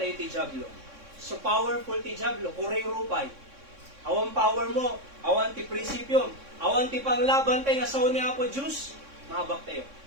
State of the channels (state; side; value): late; left; 3.6 ms